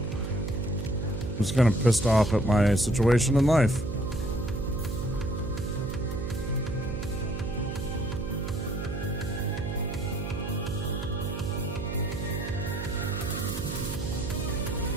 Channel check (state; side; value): noise; right; hum, 5 dB below the sound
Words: just kind of pissed off at my situation in life.